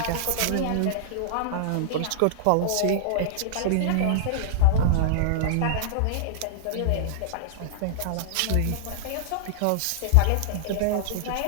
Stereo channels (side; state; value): both; different; correlation -0.02